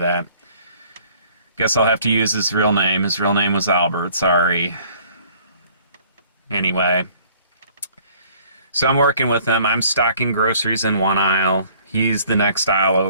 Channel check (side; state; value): both; inverted; correlation -0.57